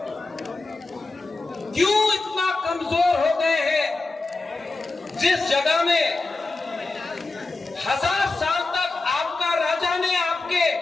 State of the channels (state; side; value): quieter; right; 3.4 dB